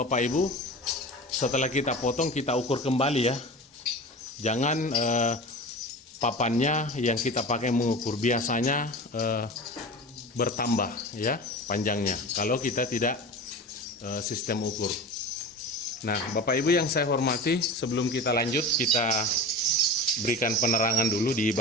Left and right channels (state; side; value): normal; both; correlation 0.32